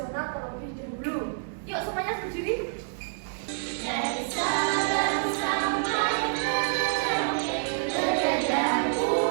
terlebih dahulu. Yuk semuanya berdiri. Dari Sabang sampai Merauke, berjajar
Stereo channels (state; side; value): silent; left; digital silence